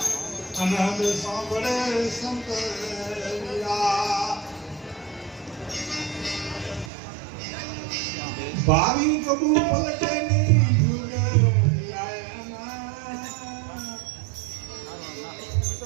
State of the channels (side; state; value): left; drops out; at 6.9 s